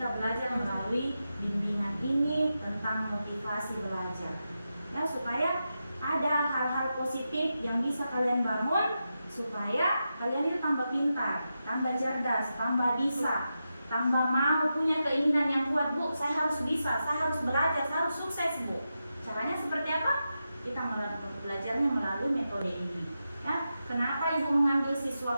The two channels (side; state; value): both; inverted; correlation -0.89